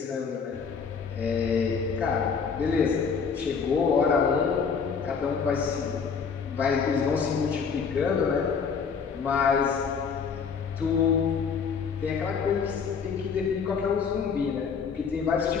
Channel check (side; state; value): right; quieter; 6.0 dB